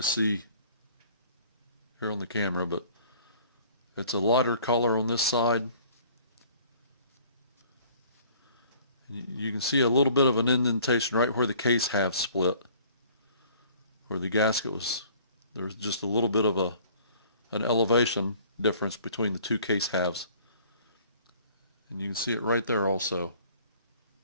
see here on the camera, but it's a lighter color on this side. You can see a little bit of an indentation right where the case halves split, where the gasket was. There's just a little bit of an elevation difference between the two case halves, and you can see it right there also.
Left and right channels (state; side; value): inverted; both; correlation -0.54